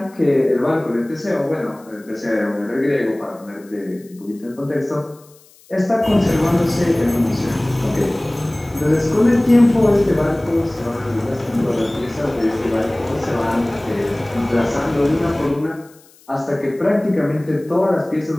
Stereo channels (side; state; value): left; noise; hiss, 28 dB below the sound